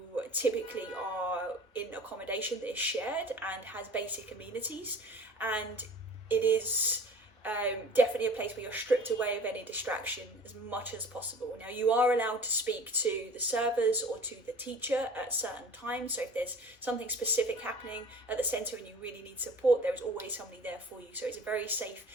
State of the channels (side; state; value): both; normal; correlation 0.44